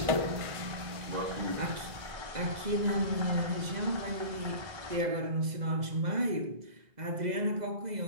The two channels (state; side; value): late; left; 2.0 ms